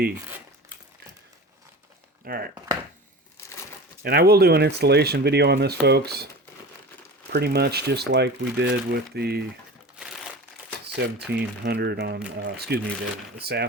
All right. And I will do an installation video on this, folks. Pretty much just like we did with the 1700 on, excuse me, the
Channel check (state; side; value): normal; both; correlation 0.34